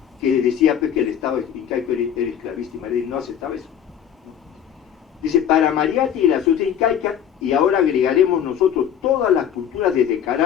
que decía pues, que el Estado incaico era esclavista, y Mariátegui no aceptaba eso. Dice, para Mariátegui la sociedad incaica, y ahora agregaremos nosotros todas las culturas desde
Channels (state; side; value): quieter; right; 9.2 dB